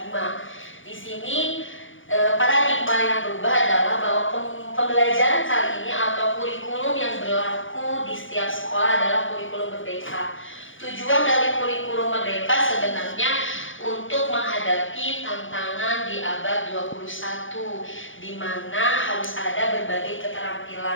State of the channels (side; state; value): right; late; 0.57 ms